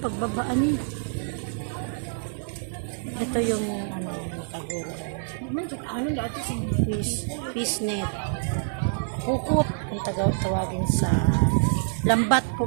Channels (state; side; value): silent; left; 60 dB below the other